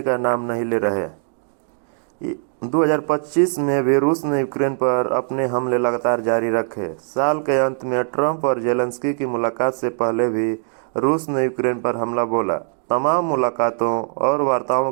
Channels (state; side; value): silent; left; 65 dB below the other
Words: का नाम नहीं ले रहे। 2025 में भी रूस ने यूक्रेन पर अपने हमले लगातार जारी रखे। साल के अंत में ट्रंप और जेलेंस्की की मुलाकात से पहले भी रूस ने यूक्रेन पर हमला बोला। तमाम मुलाकातों और वार्ताओं